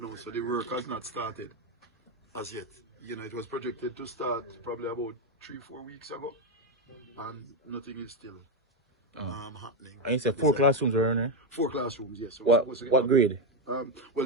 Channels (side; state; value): both; normal; correlation 0.08